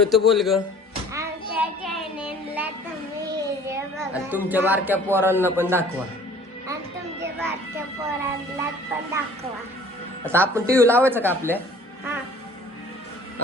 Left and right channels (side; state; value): both; normal; correlation 0.50